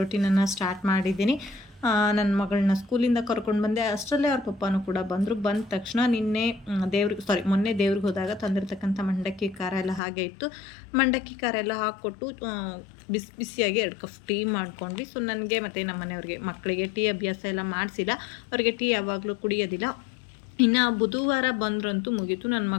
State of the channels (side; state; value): right; drops out; at 10.0 s